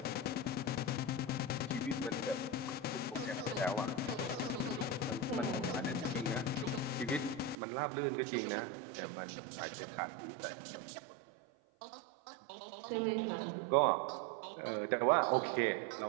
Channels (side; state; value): left; drops out; at 7.6 s